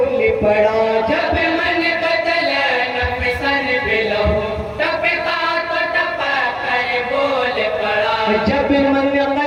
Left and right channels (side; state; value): both; identical; correlation 1.00